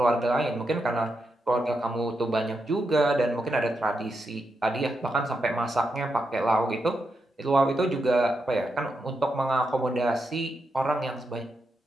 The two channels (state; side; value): normal; both; correlation 0.84